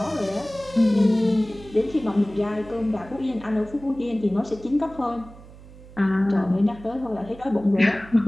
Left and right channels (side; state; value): right; noise; hum, 19 dB below the sound